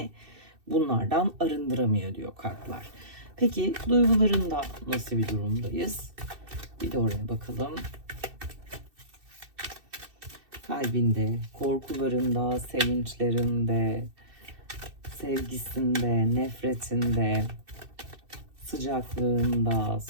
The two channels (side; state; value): left; late; 2.6 ms